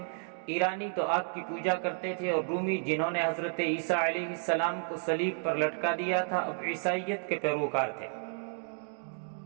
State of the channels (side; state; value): left; silent; digital silence